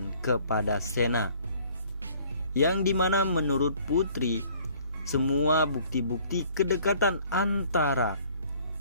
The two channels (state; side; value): inverted; both; correlation -0.56